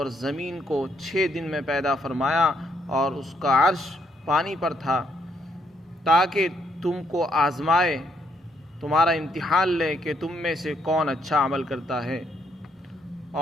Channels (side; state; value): both; normal; correlation 0.73